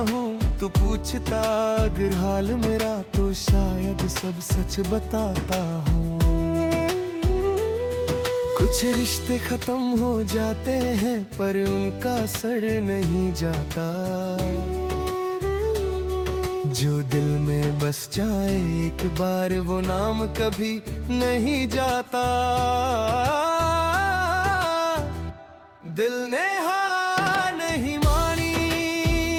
हूँ, तू पूछता अगर हाल मेरा तो शायद सब सच बताता हूँ। कुछ रिश्ते खत्म हो जाते हैं पर उनका असर नहीं जाता, जो दिल में बस जाए एक बार वो नाम कभी नहीं जाता। दिल ने हार नहीं मानी,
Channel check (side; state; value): both; identical; correlation 1.00